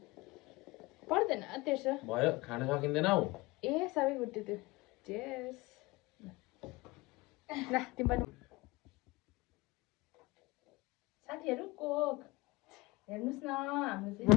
पर्दैन 1300 भयो खान सकिँदैन हौ ए सबै गुड्यो त्यो चेस ल तिम्रो साथीहरु कोक हेर्नुस् न हाम्रो चाहिँ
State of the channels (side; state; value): right; quieter; 22.1 dB